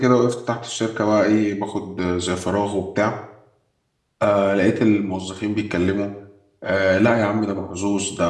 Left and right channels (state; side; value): identical; both; correlation 1.00